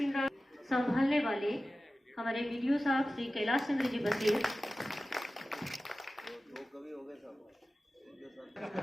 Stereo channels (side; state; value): both; normal; correlation 0.95